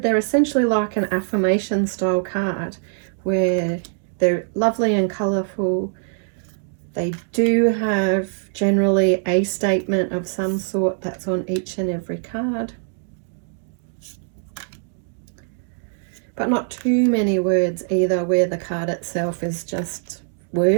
they're essentially like an affirmation style card where they're lovely and colourful. They do have generally a statement of some sort that's on each and every card, but not too many words either, where the card itself is just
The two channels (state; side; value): silent; left; digital silence